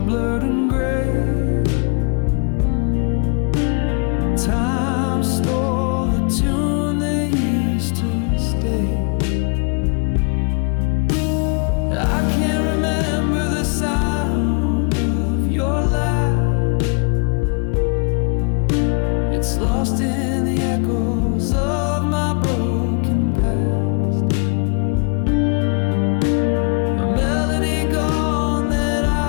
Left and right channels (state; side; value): quieter; right; 36.8 dB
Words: and gray. Time stole the tune that used to stay. I can't remember the sound of your laugh. It's lost in the echoes of my broken past. A melody gone that